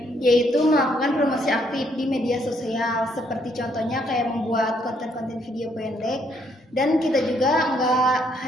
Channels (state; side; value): normal; both; correlation 0.70